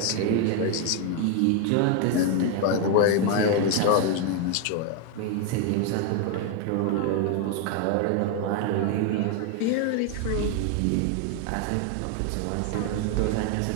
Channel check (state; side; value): different; both; correlation 0.01